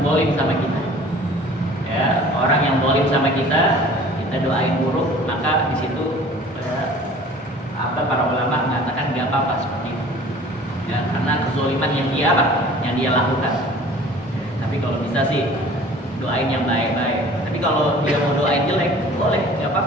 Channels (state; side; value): normal; both; correlation 0.47